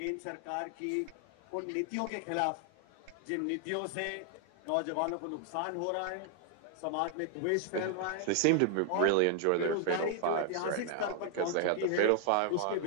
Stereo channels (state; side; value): different; both; correlation 0.00